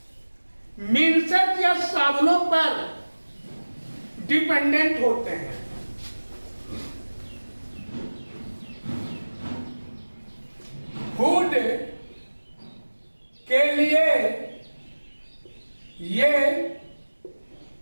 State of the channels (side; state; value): both; inverted; correlation -1.00